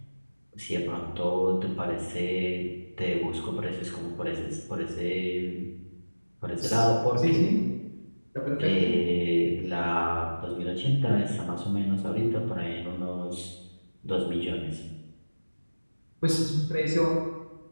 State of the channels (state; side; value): inverted; both; correlation -1.00